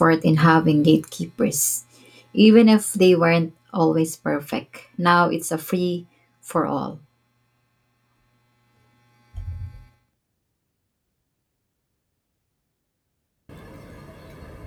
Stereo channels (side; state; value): both; identical; correlation 1.00